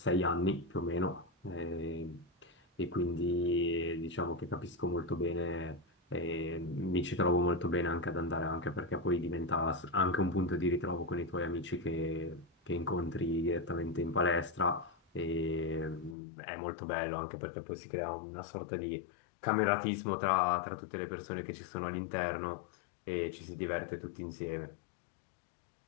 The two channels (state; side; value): drops out; right; at 16.2 s